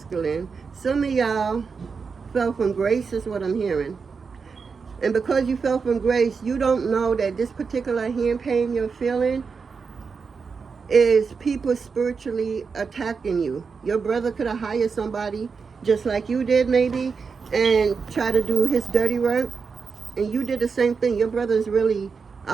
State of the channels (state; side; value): quieter; left; 5.3 dB